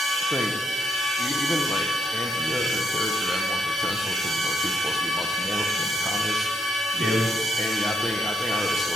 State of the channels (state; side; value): normal; both; correlation 0.77